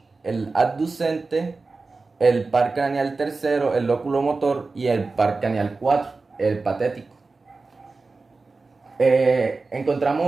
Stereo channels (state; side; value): quieter; left; 3.8 dB